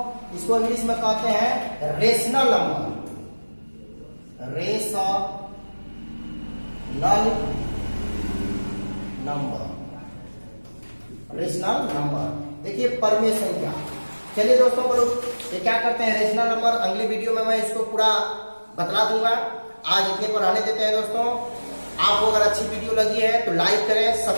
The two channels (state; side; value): inverted; both; correlation -1.00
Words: इसको इंग्लिश में कहते हैं rational number, rational number, rational number. देखिए परिमेय संख्या, चलिए दोस्तों बोलो ये क्या करते हैं रेशनल नंबर। अगली वीडियो में मैं इसको पूरा बतला दूंगा, आज इतने पर रहने देते हैं दोस्तों। आपको अगर अच्छी वीडियो लगी है तो लाइक करें,